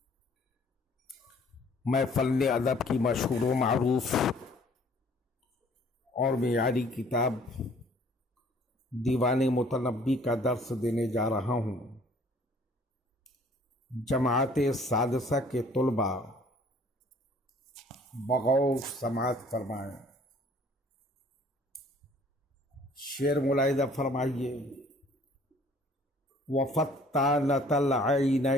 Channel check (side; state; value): both; normal; correlation 0.56